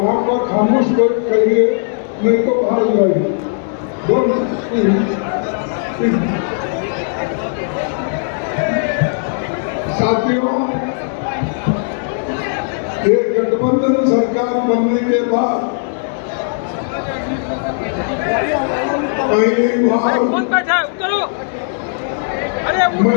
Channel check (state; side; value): silent; right; digital silence